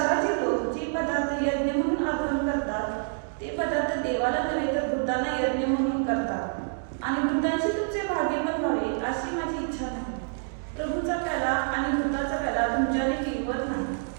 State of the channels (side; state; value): left; silent; digital silence